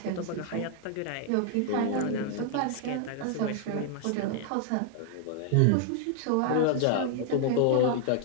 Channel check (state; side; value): different; both; correlation 0.00